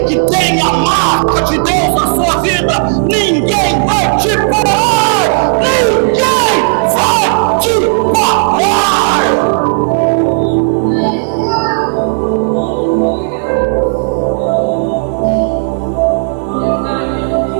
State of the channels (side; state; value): left; silent; digital silence